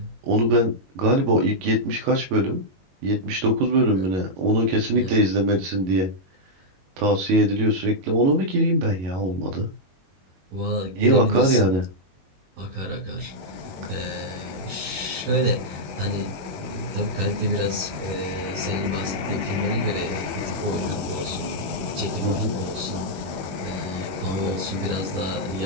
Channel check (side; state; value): left; late; 22 ms